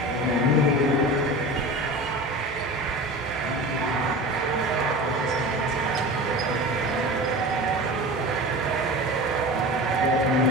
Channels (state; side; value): normal; both; correlation 0.32